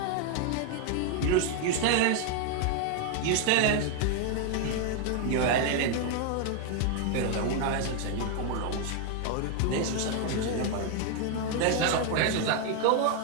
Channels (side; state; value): both; different; correlation 0.00